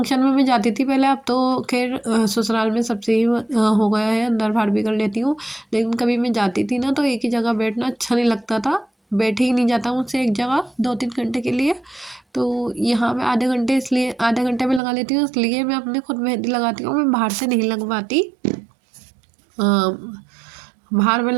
में मैं जाती थी पहले, अब तो खैर ससुराल में सबसे ही हो गया है, अंदर बाहर भी कर लेती हूँ। लेकिन कभी मैं जाती थी ना तो एक ही जगह बैठना अच्छा नहीं लगता था, बैठे ही नहीं जाता मुझसे एक जगह 2 3 घंटे के लिए। तो यहाँ मैं आधे घंटे, इसलिए आधे घंटे में लगा लेती हूँ, इसलिए मैं अपने खुद मेहंदी लगाती हूँ, मैं बाहर से नहीं लगवाती। बाहर में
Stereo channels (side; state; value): left; drops out; at 14.8 s